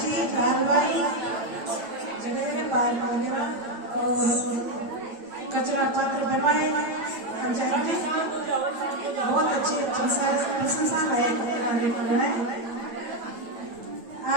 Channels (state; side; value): late; left; 8.9 ms